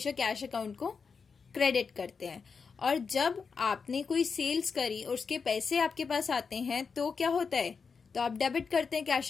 कैश अकाउंट को क्रेडिट करते हैं. और जब आपने कोई सेल्स करी और उसके पैसे आपके पास आते हैं तो क्या होता है, तो आप डेबिट करते हैं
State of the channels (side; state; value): right; quieter; 5.4 dB